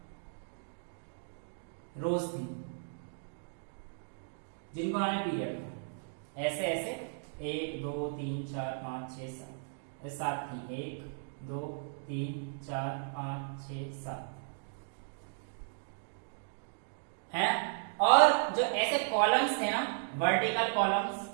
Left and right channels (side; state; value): left; silent; digital silence